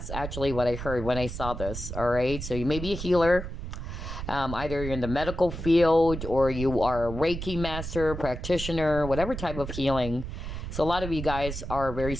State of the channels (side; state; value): right; noise; rumble, 7 dB below the sound